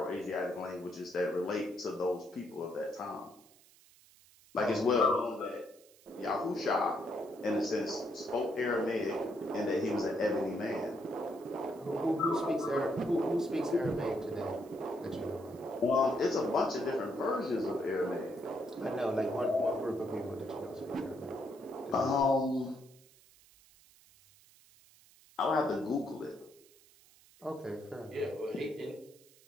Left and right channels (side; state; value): right; noise; hiss, 26 dB below the sound